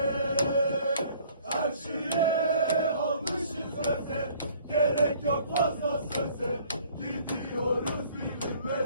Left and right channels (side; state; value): both; inverted; correlation -0.57